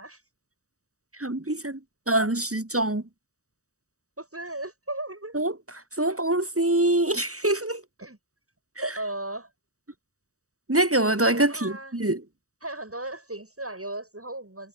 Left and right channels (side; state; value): left; late; 0.65 ms